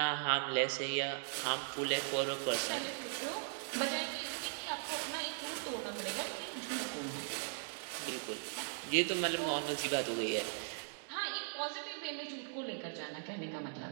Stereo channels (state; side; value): silent; left; digital silence